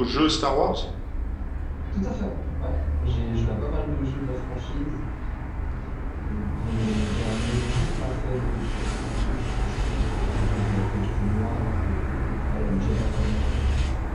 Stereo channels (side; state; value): both; identical; correlation 1.00